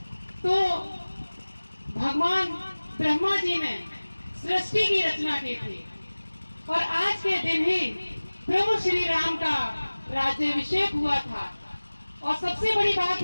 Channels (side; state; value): both; inverted; correlation -1.00